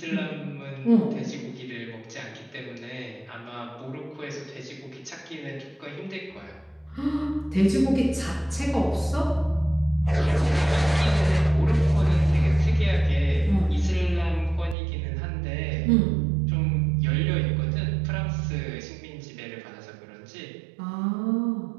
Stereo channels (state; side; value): drops out; left; at 14.8 s